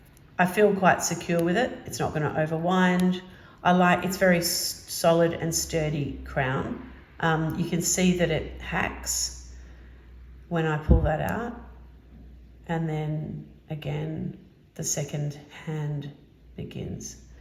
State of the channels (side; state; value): both; identical; correlation 1.00